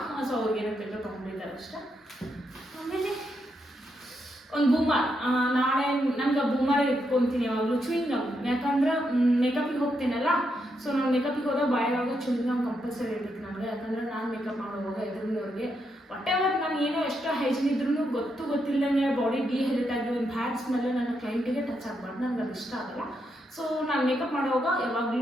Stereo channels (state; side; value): normal; both; correlation 0.81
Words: ಸೊ ಅವ್ರಿಗೆ ಏನೋ ಬೇಕು ತೊಗೊಂಡಿದ್ದಾರೆ ಅಷ್ಟೇ. ಆಮೇಲೆ ಒಂದು ಬೂಮರ್. ನಾಳೆ ನಮ್ಗೆ ಬೂಮರ್ ಇಟ್ಕೊತೀನಿ ಯಾವಾಗಲೂ. ಚೂಯಿಂಗ್ ಗಮ್, ಯಾಕಂದ್ರೆ ಮೇಕಪಿಗೆ ಹೋಗ್ತೀನಲ್ಲ. ಸೊ ನಾನು ಮೇಕಪಿಗೆ ಹೋದಾಗ ಬಾಯಿಯೊಳಗೆ ಚೂಯಿಂಗ್ ಗಮ್ ಕಂಪಲ್ಸರಿ ಇರ್ಬೇಕು ನನಗೆ. ಯಾಕಂದ್ರೆ ನಾನು ಮೇಕಪ್ ಮಾಡೋವಾಗ ಎದುರಿನವ್ರಿಗೆ ವಾಟೆವರ್ ನಾನು ಏನೋ ಎಷ್ಟು ಹೈಜಿನ್ ಇದ್ರೂ ಗೊತ್ತಿಲ್ಲದಂಗೆ ಬಾಡಿ ಡಿಹೈಡ್ರೇಟ್ ಆಗಿ ಒಂದು ಬ್ಯಾಡ್ ಸ್ಮೆಲ್ಲು ನನ್ನ ಕ್ಲೈಂಟಿಗೆ ಟಚ್ ಆಗಬಾರ್ದು. ನನಗೆ ಅದು ಇಷ್ಟ ಆಗಲ್ಲ. ಸೊ ನಾನು ಮೇಕಪ್ ಮಾಡುವಾಗ